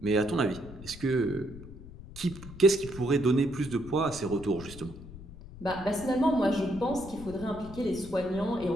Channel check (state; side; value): noise; left; rumble, 15 dB below the sound